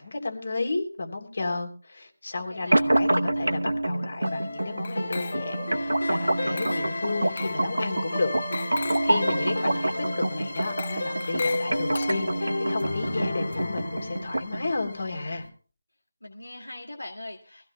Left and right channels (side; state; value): both; inverted; correlation -0.96